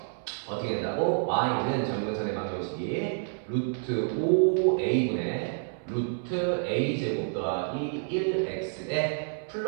어떻게 된다고? y는 점근선의 방정식이 루트 5a분의 루트 a제곱 더하기 1x에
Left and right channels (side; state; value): left; silent; 59 dB below the other